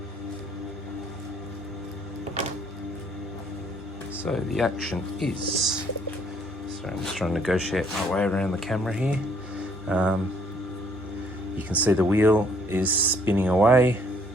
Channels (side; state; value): both; normal; correlation 0.64